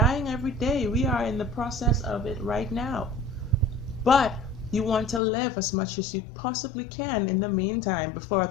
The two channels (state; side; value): drops out; right; at 5.2 s